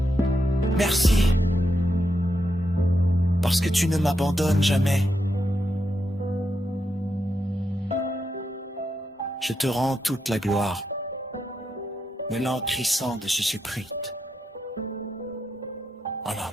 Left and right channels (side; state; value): both; normal; correlation 0.84